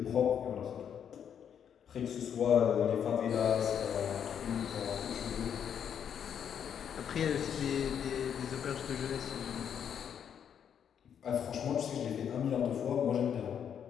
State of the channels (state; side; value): quieter; right; 8.4 dB